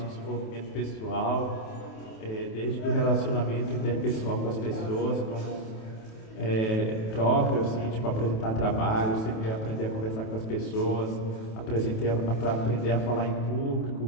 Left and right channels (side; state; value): right; late; 27 ms